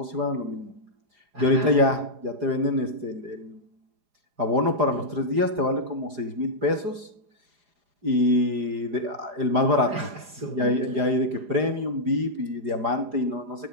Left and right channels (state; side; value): late; left; 4.9 ms